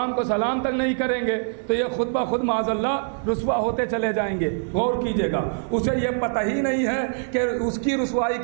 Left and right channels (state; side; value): silent; left; 63 dB below the other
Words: کو سلام تک نہیں کریں گے تو یہ خود بخود معاذ اللہ رسوا ہوتے چلے جائیں گے۔ غور کیجئے گا، اسے یہ پتہ ہی نہیں ہے کہ اس کی رسوائی